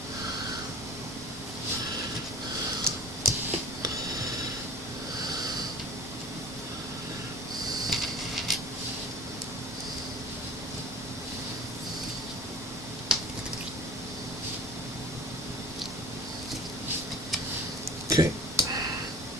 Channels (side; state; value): both; normal; correlation 0.41